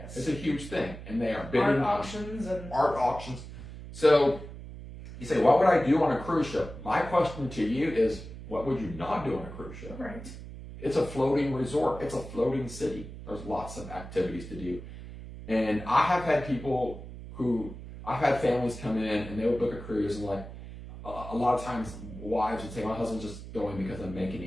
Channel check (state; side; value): noise; right; hum, 12 dB below the sound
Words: It's a huge thing, and they are bidding art auctions. So you say, what would I do on a cruise ship? My question to you is, what would you not do on a cruise ship? Right. It's a floating resort. It's a floating city. There's lots of activities to do. And I have had I've had families come in and they would book a cruise, and like a lot of times wives would say, my husband's just going because I'm making